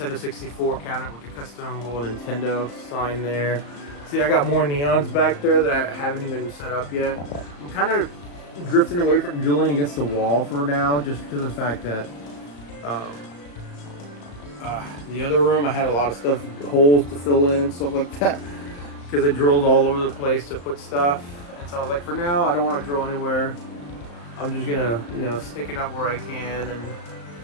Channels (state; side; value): late; right; 35 ms